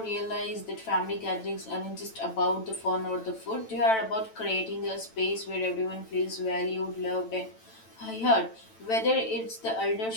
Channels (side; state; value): right; late; 9.0 ms